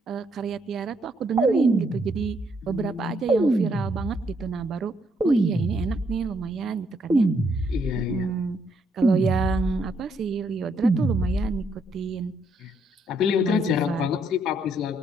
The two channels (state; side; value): normal; both; correlation 0.73